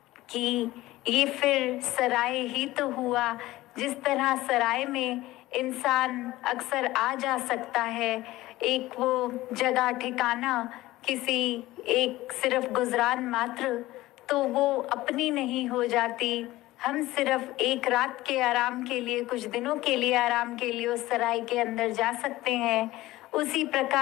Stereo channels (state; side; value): quieter; right; 17.5 dB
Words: कि ये फिर सराय ही तो हुआ, जिस तरह सराय में इंसान अक्सर आ जा सकता है, एक वो जगह ठिकाना किसी एक सिर्फ गुजरान मात्र, तो वो अपनी नहीं हो जाती। हम सिर्फ एक रात के आराम के लिए, कुछ दिनों के लिए आराम के लिए उस सराय के अंदर जा सकते हैं। उसी